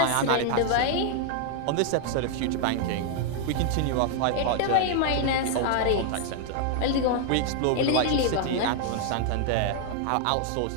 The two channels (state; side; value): different; both; correlation 0.00